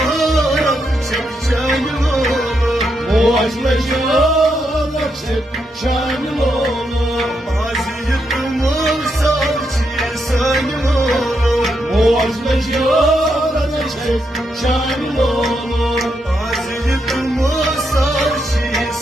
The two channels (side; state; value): both; normal; correlation 0.81